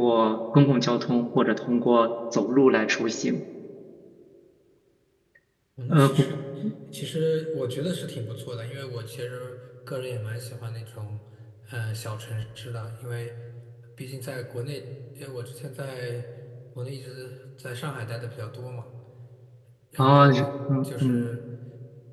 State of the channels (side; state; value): both; identical; correlation 1.00